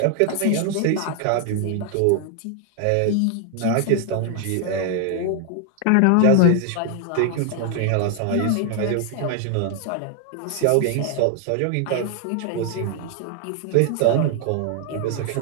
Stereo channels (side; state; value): both; different; correlation 0.00